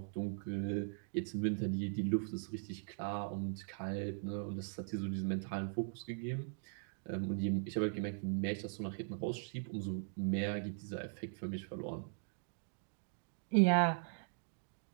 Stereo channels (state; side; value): silent; left; digital silence